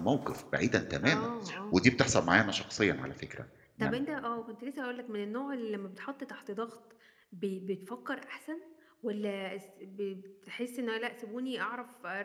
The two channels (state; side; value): identical; both; correlation 1.00